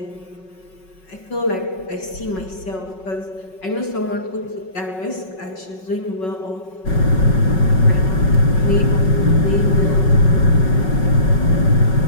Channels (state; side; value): late; right; 5.4 ms